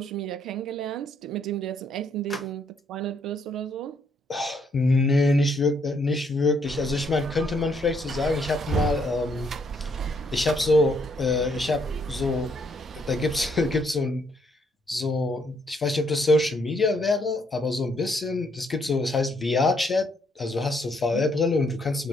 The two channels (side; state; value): both; normal; correlation 0.71